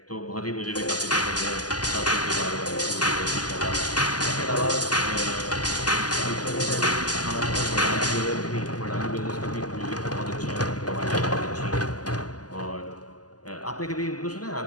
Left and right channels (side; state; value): right; late; 0.68 ms